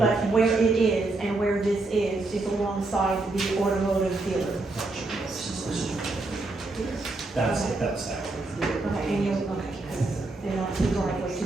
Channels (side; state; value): left; quieter; 3.2 dB